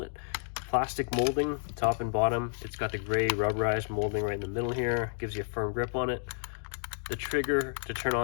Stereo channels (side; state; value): right; silent; digital silence